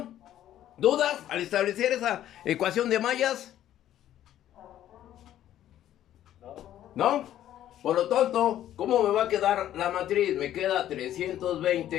¿Dudas al establecer esa ecuación de mallas? ¿No? Por lo tanto, ¿cómo me va a quedar la matriz? Me queda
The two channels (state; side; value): quieter; right; 12.0 dB